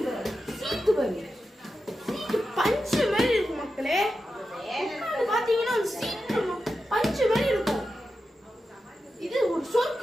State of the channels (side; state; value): both; normal; correlation 0.90